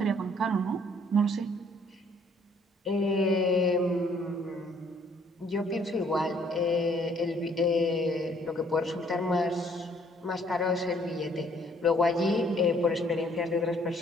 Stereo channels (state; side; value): normal; both; correlation 0.62